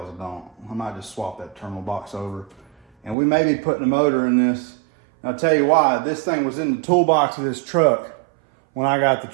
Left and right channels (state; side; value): drops out; left; at 3.2 s